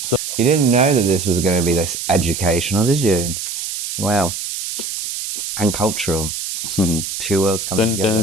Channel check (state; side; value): noise; right; hiss, 6 dB below the sound